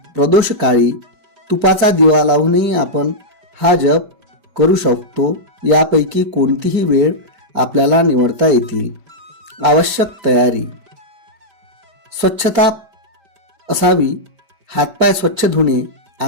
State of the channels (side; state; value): left; late; 5.0 ms